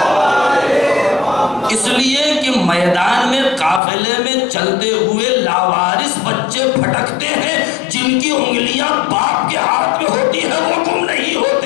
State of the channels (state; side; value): drops out; right; at 3.8 s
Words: اس لیے کہ میدان میں قافلے میں چلتے ہوئے لاوارث بچے پھٹکتے ہیں، جن کی انگلیاں باپ کے ہاتھ میں ہوتی ہیں وہ گم نہیں